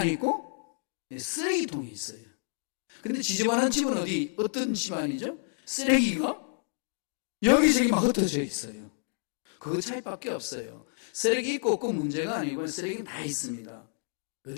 있고 쓰레기통에 있어요. 근데 지저분한 집은 어떤 집안이죠? 쓰레기가 여기저기 막 흩어져 있어요. 그 차이밖에 없어요. 쓰레기 있고 없고 문제가 아니고 쓰레기는 다 있습니다.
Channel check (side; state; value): right; silent; 56 dB below the other